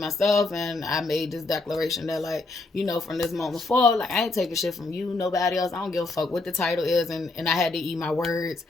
And I made this declaration that, like, from this moment forward, like, I ain't taking shit from you, nobody else. I don't give a fuck what the title is. And I had to eat my words.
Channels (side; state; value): right; quieter; 3.3 dB